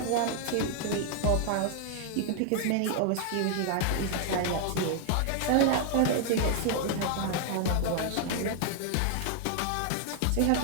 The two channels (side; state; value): both; different; correlation 0.00